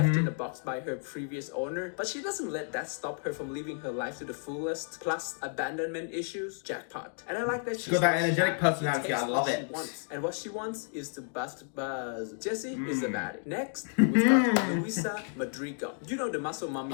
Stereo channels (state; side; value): silent; right; 55 dB below the other